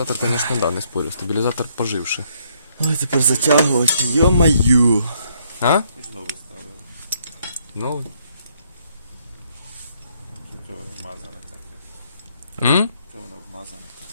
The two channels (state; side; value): inverted; both; correlation -0.69